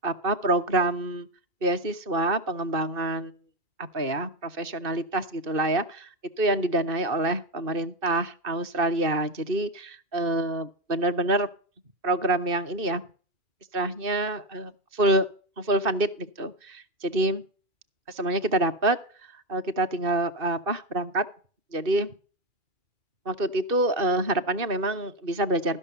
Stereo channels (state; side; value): late; left; 2.6 ms